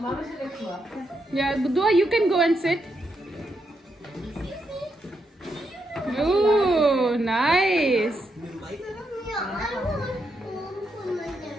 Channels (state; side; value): normal; both; correlation 0.81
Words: Yeah, Duaa, you can go and sit. Oh, nice.